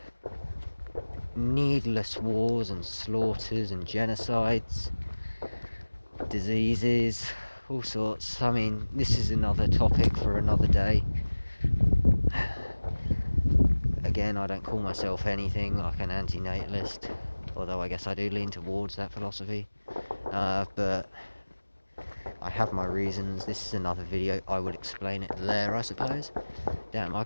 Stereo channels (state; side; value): inverted; both; correlation -1.00